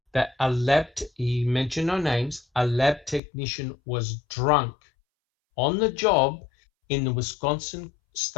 that he mentioned no names, a lab technician was drunk on the job in the Wisconsin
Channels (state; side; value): drops out; right; at 3.2 s